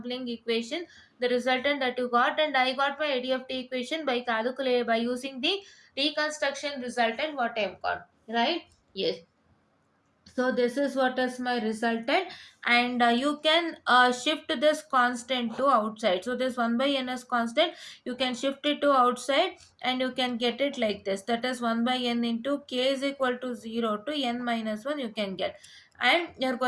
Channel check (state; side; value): identical; both; correlation 1.00